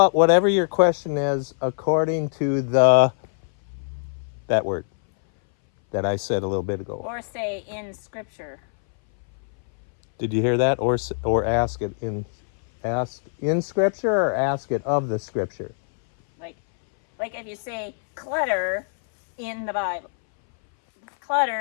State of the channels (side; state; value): right; silent; 61 dB below the other